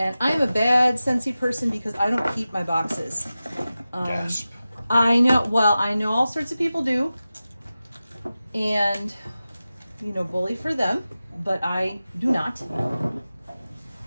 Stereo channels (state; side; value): inverted; both; correlation -0.95